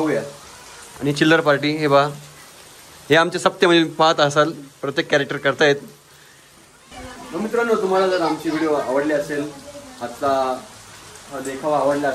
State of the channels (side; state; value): both; identical; correlation 1.00